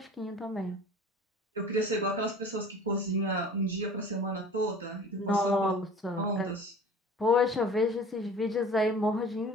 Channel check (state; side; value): normal; both; correlation 0.44